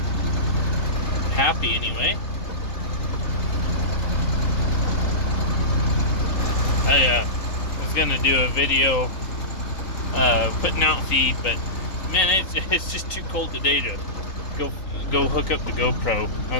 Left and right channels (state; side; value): late; right; 3.9 ms